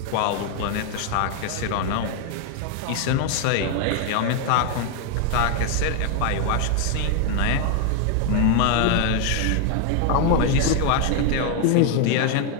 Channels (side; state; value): both; different; correlation 0.01